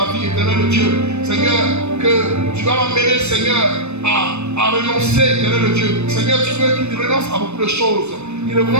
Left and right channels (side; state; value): left; late; 0.81 ms